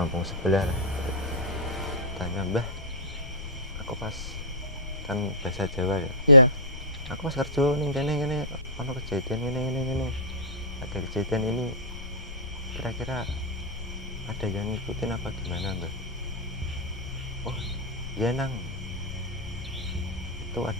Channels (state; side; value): noise; left; rumble, 11 dB below the sound